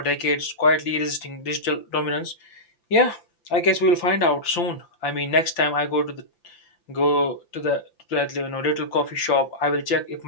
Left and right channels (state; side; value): late; right; 5.8 ms